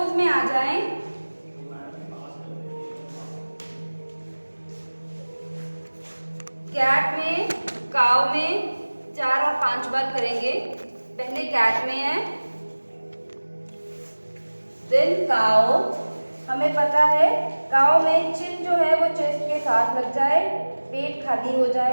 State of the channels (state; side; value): inverted; both; correlation -1.00